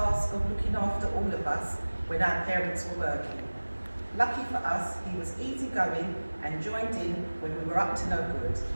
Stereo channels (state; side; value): inverted; both; correlation -1.00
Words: of looking after all of us when our parents were working. Lucky for us, he was easygoing and joined in when we were up to no good.